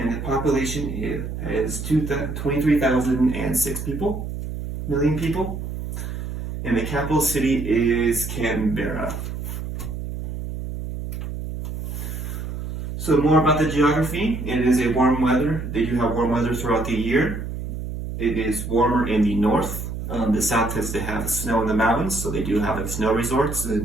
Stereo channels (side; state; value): right; noise; hum, 6 dB below the sound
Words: the population is 23,006 million people, and the capital city is Canberra. So more about the geography. It is a warm weather. They do have warm weather throughout the year. It is warmer in the north. The south tends to have snow in the mountains, so they do have like snow resorts